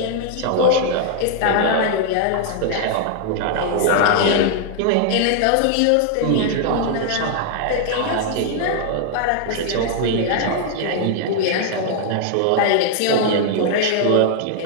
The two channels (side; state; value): both; different; correlation 0.00